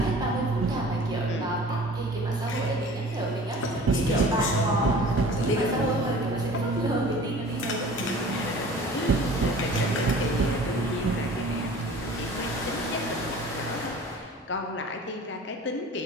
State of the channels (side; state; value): both; normal; correlation 0.44